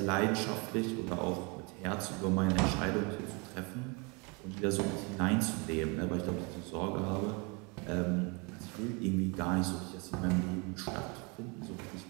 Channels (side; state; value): left; quieter; 30.9 dB